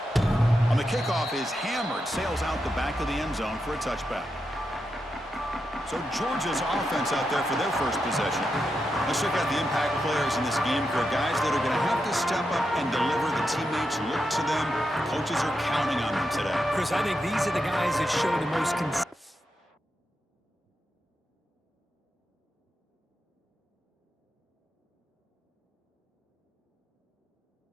On the kickoff is hammered, sails out the back of the end zone for a touchback. So Georgia's offense out there for their first possession. Let's check out the impact players in this game, Kurt. Guys that are going to have to step up and deliver. The teammates look to them. Coaches are counting on them today. Chris, I think these are the guys that show the most consistency.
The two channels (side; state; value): both; normal; correlation 0.86